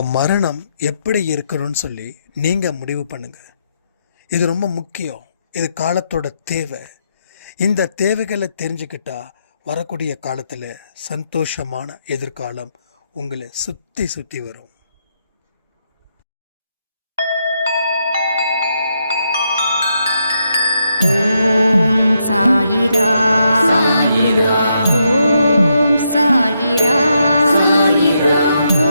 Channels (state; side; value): inverted; both; correlation -0.80